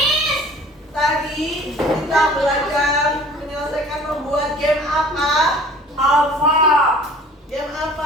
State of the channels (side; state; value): both; normal; correlation 0.48